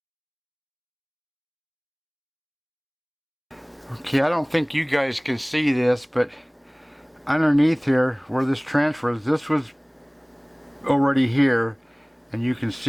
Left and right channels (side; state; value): both; identical; correlation 1.00